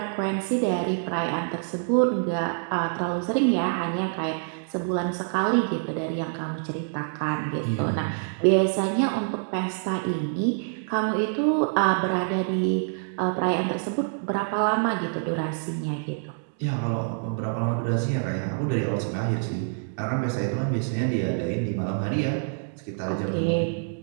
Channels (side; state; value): left; silent; digital silence